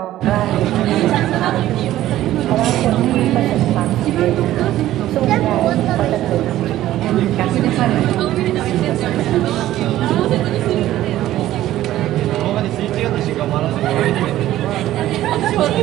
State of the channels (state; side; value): quieter; left; 14.1 dB